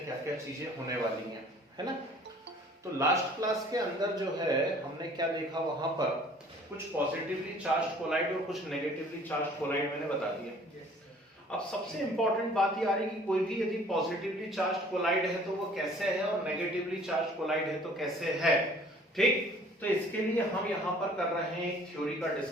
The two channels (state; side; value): normal; both; correlation 0.53